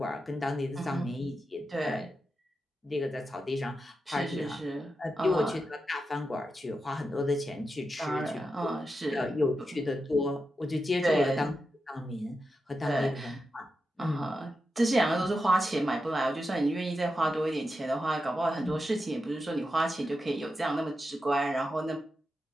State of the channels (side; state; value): both; normal; correlation 0.88